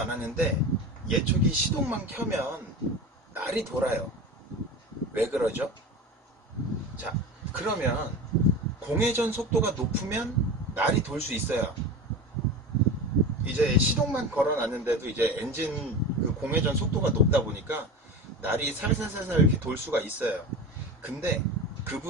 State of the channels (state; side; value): normal; both; correlation 0.29